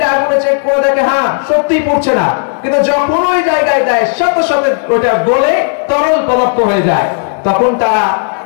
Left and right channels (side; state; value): right; silent; digital silence